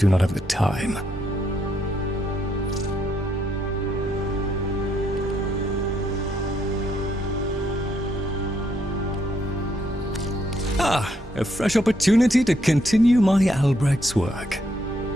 not have the time. A fresh opportunity to continue my Albrecht's work.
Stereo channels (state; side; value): normal; both; correlation 0.74